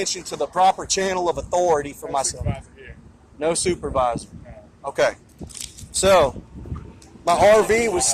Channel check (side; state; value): both; identical; correlation 1.00